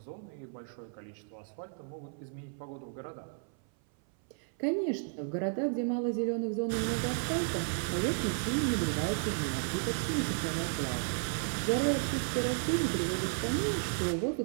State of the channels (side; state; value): left; silent; 55 dB below the other